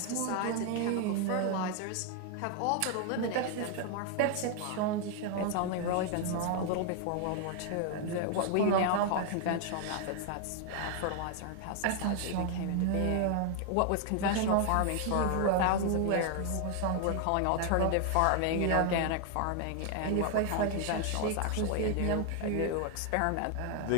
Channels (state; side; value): different; both; correlation 0.00